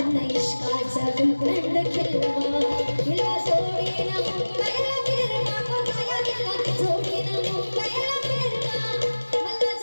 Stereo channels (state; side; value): inverted; both; correlation -1.00